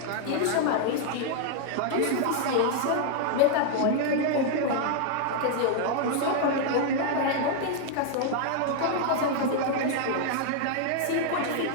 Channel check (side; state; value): both; different; correlation 0.00